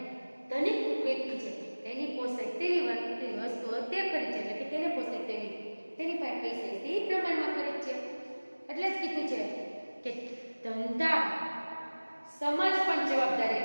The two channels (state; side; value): inverted; both; correlation -1.00